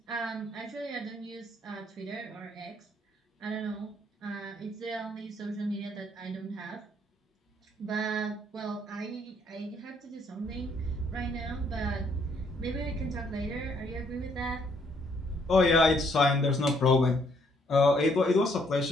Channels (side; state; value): both; normal; correlation 0.68